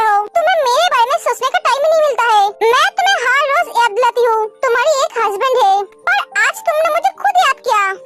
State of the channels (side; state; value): both; identical; correlation 1.00